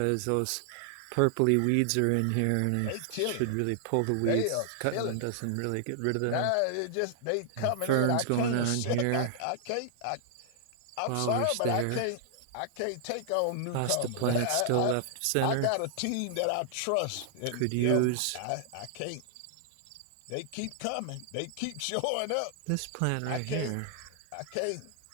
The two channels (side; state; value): both; different; correlation -0.01